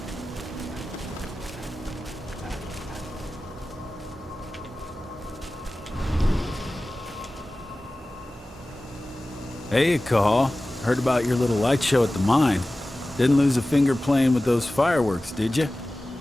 Hey, Cahal. Heard about your little light show at the mine. Didn't lose a finger playing with those fireworks, did you?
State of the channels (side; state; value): both; normal; correlation 0.96